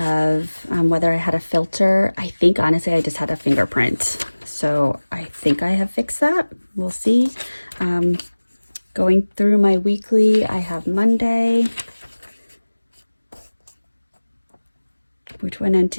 whether I had a filter. I think honestly I just had a fingerprint, so I think I have fixed that. We'll see. Going through my weekly, I have Monday, which went into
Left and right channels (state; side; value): inverted; both; correlation -1.00